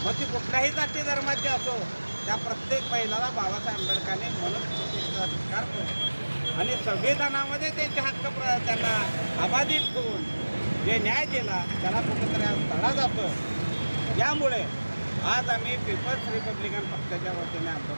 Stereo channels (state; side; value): inverted; both; correlation -1.00